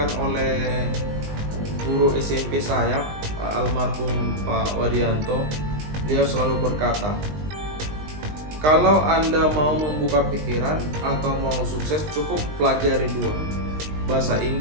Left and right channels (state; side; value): late; left; 20 ms